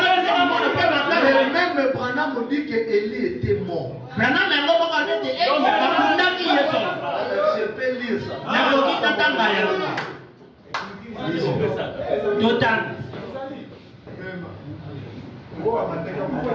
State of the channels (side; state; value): both; identical; correlation 1.00